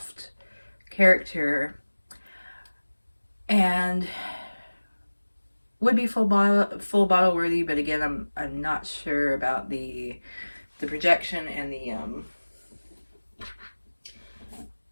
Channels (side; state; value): both; inverted; correlation -1.00